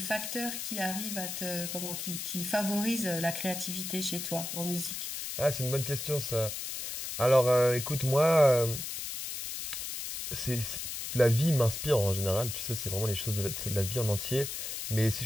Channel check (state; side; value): noise; left; hiss, 5 dB below the sound